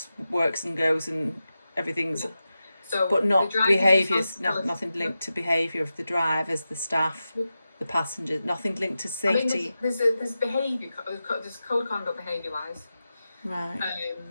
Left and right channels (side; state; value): both; inverted; correlation -0.92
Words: works and goes and everything's, so but not behaviours, nothing to linked to behaviour of the drivers, the staff, the passengers, nothing linked to safety. I mean, there's behaviour, there's code of conduct behaviour wise, Right.